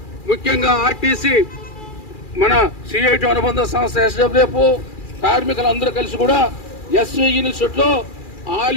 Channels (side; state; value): right; late; 2.4 ms